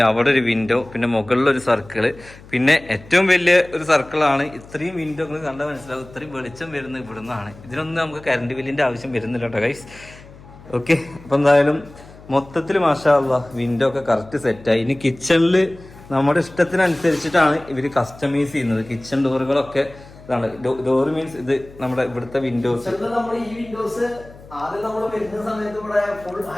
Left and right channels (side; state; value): left; noise; hum, 21 dB below the sound